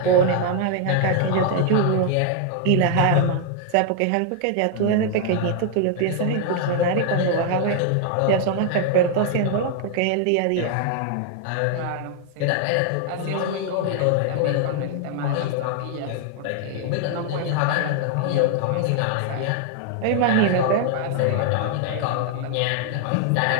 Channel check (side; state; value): both; different; correlation 0.00